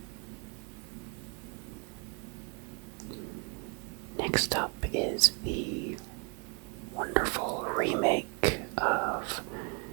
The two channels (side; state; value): left; quieter; 31.0 dB